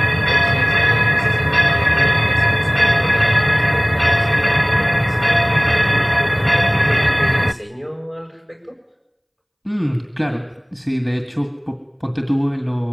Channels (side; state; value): both; identical; correlation 1.00